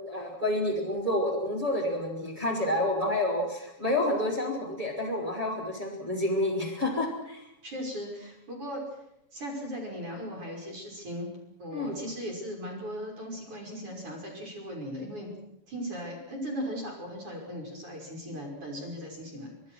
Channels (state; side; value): late; left; 7.1 ms